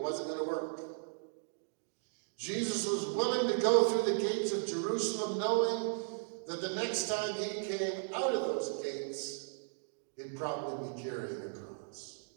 wasn't going to work. Jesus was willing to go through the gates of Jerusalem knowing that the next time he came out of those gates, he'd probably be carrying a cross.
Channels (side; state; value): left; silent; digital silence